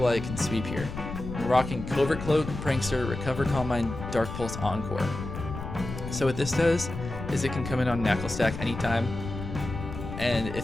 can sweep here. I'm rocking Covert Cloak, Prankster, Recover, Calm Mind, Dark Pulse, Encore. So what this does is it can come in on Knacklestack anytime, and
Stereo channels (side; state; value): left; noise; rumble, 8 dB below the sound